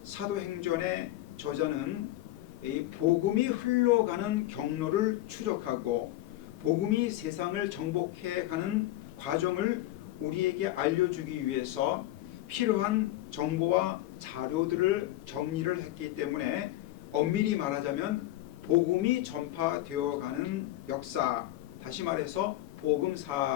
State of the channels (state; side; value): quieter; right; 15.5 dB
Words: 사도행전의 저자는 이 복음이 흘러가는 경로를 추적하고 복음이 세상을 정복해 가는 과정을 우리에게 알려주기 위해서 필요한 정보와 자료들을 정리를 했기 때문에 엄밀히 말하자면 복음이 전파되어 가는 역사, 다시 말해서